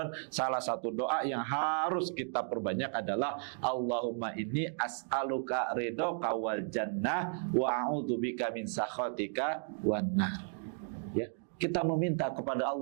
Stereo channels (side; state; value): left; silent; 55 dB below the other